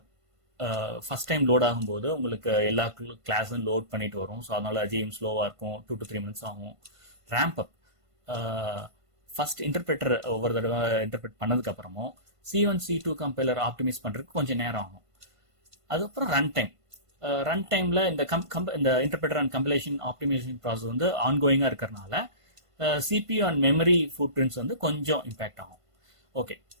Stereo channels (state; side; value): late; left; 1.5 ms